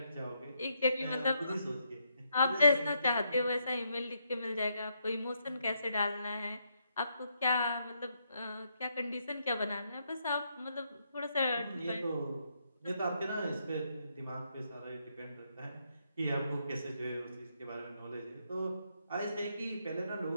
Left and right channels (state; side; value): inverted; both; correlation -0.77